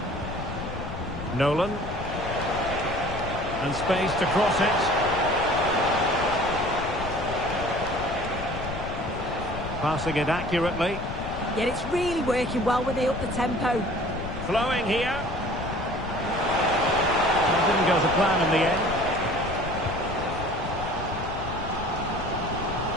Nolan. And space to cross it. Passing it accurately. Yet it's really working well when they up the tempo. Flowing here. It didn't go to plan in the end.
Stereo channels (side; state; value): left; noise; rumble, 8 dB below the sound